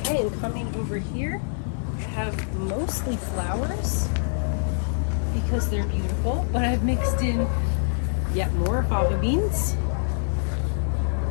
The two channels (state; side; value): silent; right; digital silence